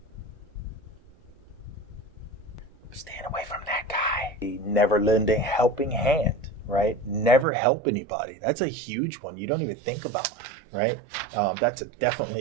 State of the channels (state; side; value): drops out; left; at 7.5 s